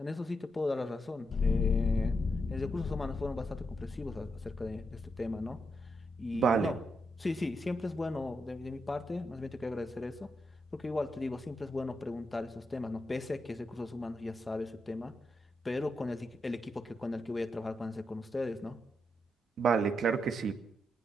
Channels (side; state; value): both; normal; correlation 0.83